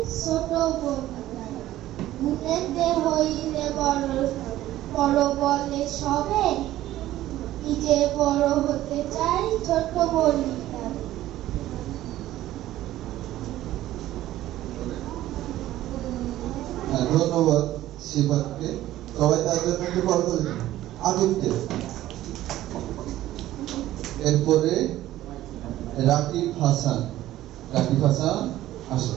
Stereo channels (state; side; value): quieter; left; 14.4 dB